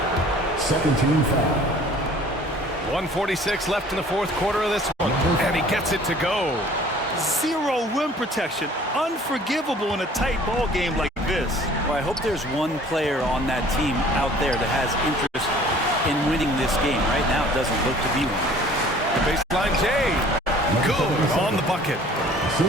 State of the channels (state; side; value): normal; both; correlation 0.51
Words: Second team foul. 1:46 left in the fourth quarter of this one. And he gets it to go. Zero rim protection. Unforgivable in a tight ball game like this. Well, I hope there's one player on that team out there that has interest in winning this game. Right now, it doesn't look to be one. The baseline J. Good on the bucket.